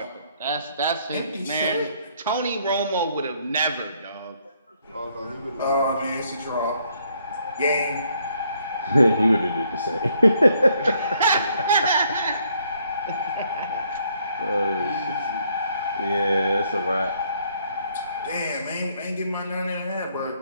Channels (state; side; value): inverted; both; correlation -0.69